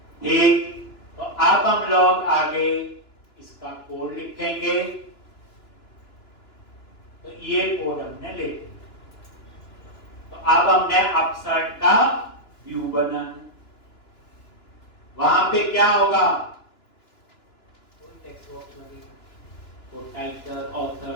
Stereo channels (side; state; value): right; late; 2.9 ms